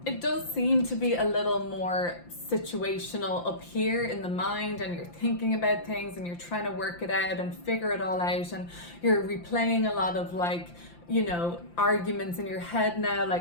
it does seem to be a little more situational up here in the mind, and you're thinking about things and you're trying to work it out and figure it all out, and you're replaying a lot of like, you know, arguments in your head now,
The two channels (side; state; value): right; late; 5.8 ms